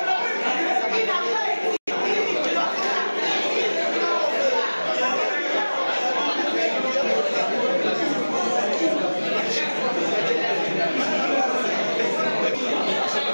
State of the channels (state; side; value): inverted; both; correlation -1.00